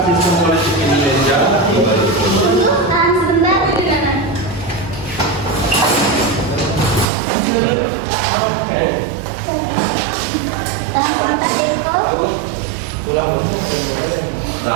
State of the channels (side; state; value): left; drops out; at 7.1 s